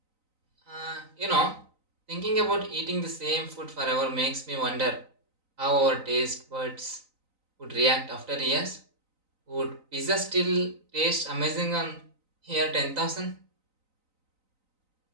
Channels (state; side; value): late; left; 3.9 ms